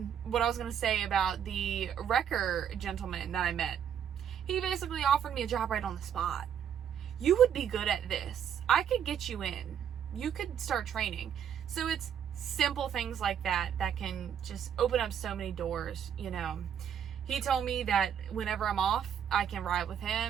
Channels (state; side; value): quieter; left; 8.8 dB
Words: I was gonna say about the wrecker gentleman that I met, he basically offered me a job right on the spot. You would be good at this. I could get you in. You could start training. So it's simple things like that that can just open up so many doors, you know. He told me that whenever I'm off, I can ride with